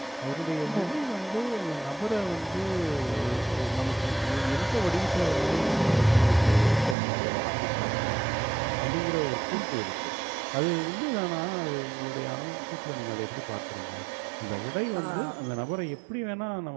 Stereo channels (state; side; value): drops out; left; at 7.0 s